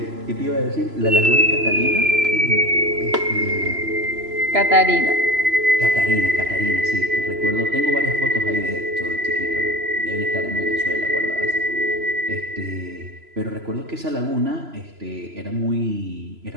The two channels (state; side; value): late; left; 3.0 ms